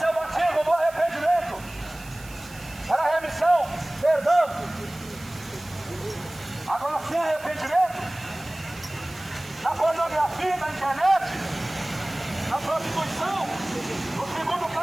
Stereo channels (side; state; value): right; noise; hiss, 19 dB below the sound